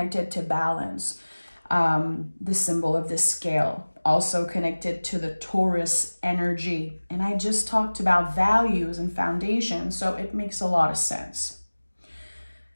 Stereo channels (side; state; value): both; inverted; correlation -1.00